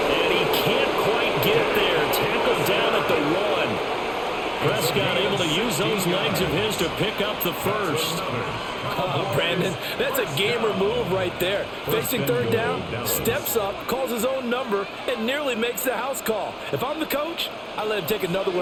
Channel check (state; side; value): identical; both; correlation 1.00